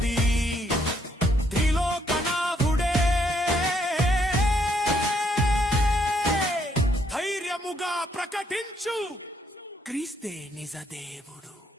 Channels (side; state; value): both; normal; correlation 0.71